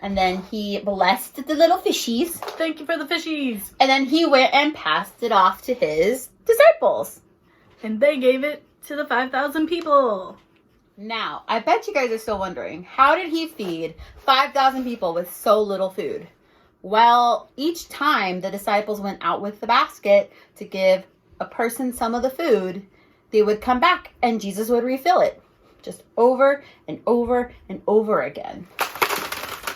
And then he blessed the little fishies. Thank you for the fishies. And then he went and passed it off to his disciples. And they gave it to the 5,000 people. Now, I bet you guys are still wondering, how did he feed 5,000 people with so little food? Well, each time the disciples went out with the basket to give a person some of the food, they would come back and Jesus would refill it. Just over and over and over again.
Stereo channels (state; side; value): identical; both; correlation 1.00